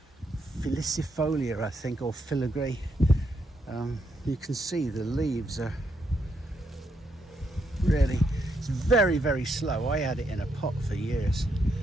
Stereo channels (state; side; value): normal; both; correlation 0.78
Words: filicifolia, I think, or filigree. You can see the leaves are really, it's very, very slow. I had it in a pot for years,